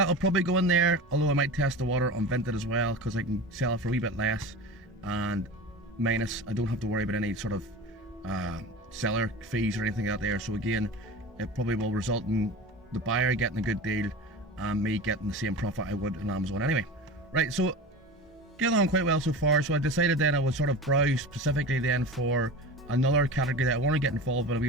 probably go in there, although I might test the water on Vinted as well, because I can sell it for a wee bit less, and minus, I don't have to worry about any sort of seller fees or anything out there. So again, it probably will result in the buyer getting a good deal and me getting the same profit I would on Amazon anyway. Right, so getting on quite well so far. So I decided then I would sort of browse specifically then for another category that I want to get involved with a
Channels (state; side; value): normal; both; correlation 0.31